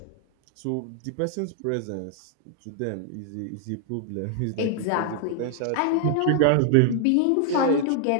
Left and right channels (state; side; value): different; both; correlation 0.00